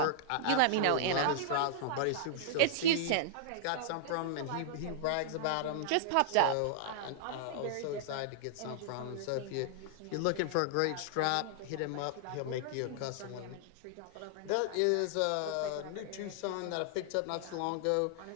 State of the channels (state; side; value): different; both; correlation -0.01